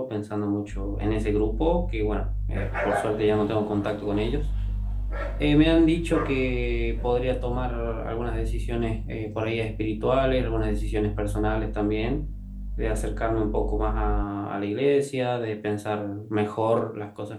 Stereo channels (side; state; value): both; identical; correlation 1.00